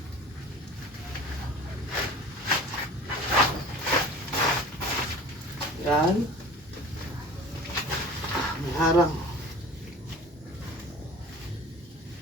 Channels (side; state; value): both; normal; correlation 0.41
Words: yan, may harang.